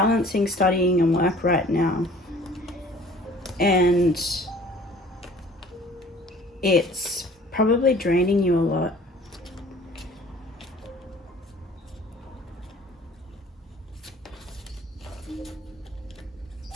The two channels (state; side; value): normal; both; correlation 0.50